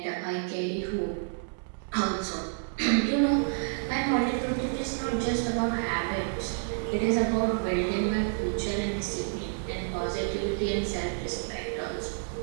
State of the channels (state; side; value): silent; left; digital silence